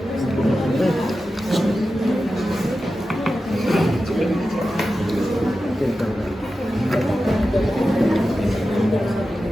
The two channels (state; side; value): normal; both; correlation 0.92